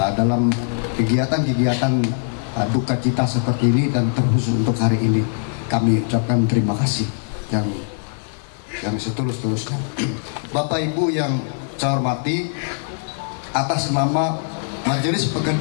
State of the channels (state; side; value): silent; right; 58 dB below the other